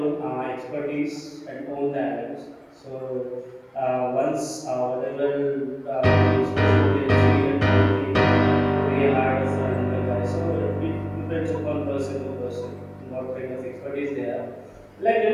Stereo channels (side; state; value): both; identical; correlation 1.00